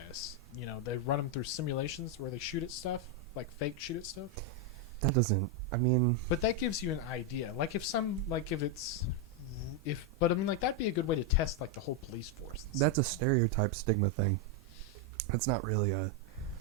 They run them through simulations where they shoot at stuff, like fake shoot at stuff. that doesn't. I mean, But that gives you an idea. But I mean, like, that'd be a good way to test, like, the whole police force. that's a stereotype stigma thing. That's not really a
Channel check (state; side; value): normal; both; correlation 0.02